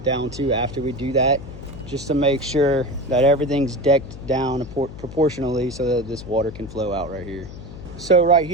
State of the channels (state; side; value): noise; left; hum, 13 dB below the sound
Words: down too after we do that, just to make sure that everything's decked down proportionally so that this water can flow out right here. So right